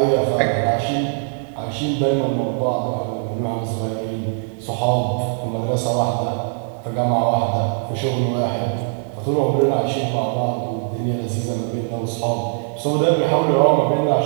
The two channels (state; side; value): silent; left; 65 dB below the other